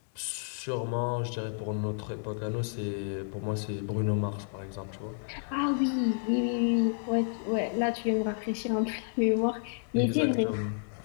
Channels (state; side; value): silent; right; digital silence